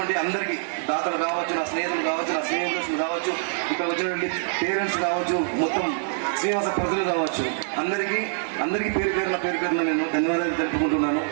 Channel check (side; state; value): left; silent; digital silence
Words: అందరికీ, దాతలు కావచ్చు, నా స్నేహితులు కావచ్చు, నా స్నేహితులు కావచ్చు, ఇక్కడ వచ్చినటువంటి పేరెంట్స్ కావచ్చు, మొత్తం శ్రీనివాస ప్రజలు కావచ్చు, అందరికీ పేరు పేరున నేను ధన్యవాదాలు తెలుపుకుంటున్నాను.